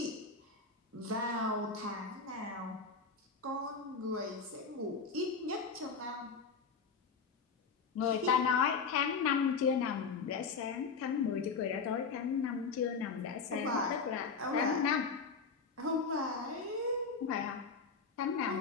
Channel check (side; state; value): right; quieter; 5.0 dB